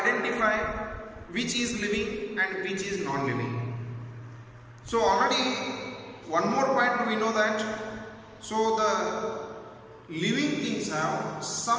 which is living and which is non-living. So already one more point we know that so the living things have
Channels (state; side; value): identical; both; correlation 1.00